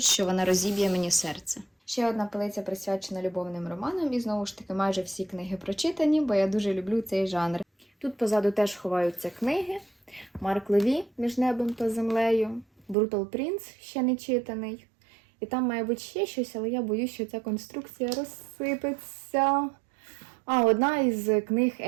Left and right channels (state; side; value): drops out; left; at 13.0 s